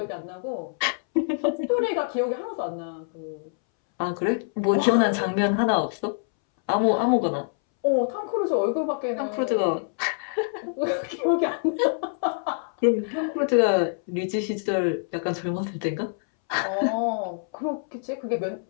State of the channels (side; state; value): right; silent; 61 dB below the other